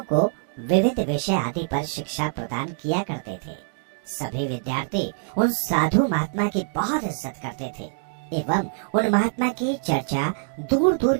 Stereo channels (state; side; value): silent; left; digital silence